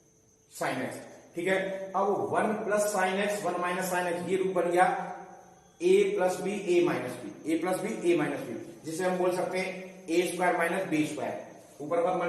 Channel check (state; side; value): identical; both; correlation 1.00